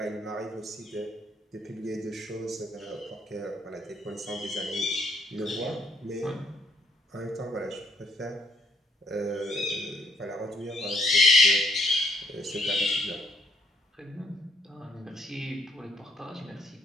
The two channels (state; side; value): normal; both; correlation 0.69